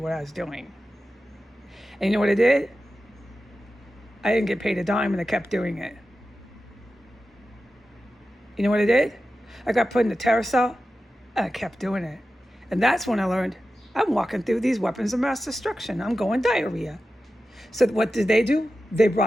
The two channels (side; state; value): both; normal; correlation 0.93